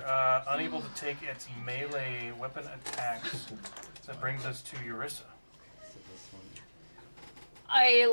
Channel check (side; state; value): both; inverted; correlation -1.00